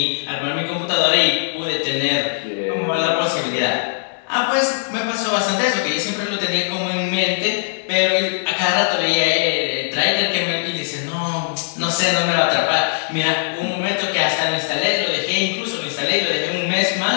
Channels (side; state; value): right; silent; 66 dB below the other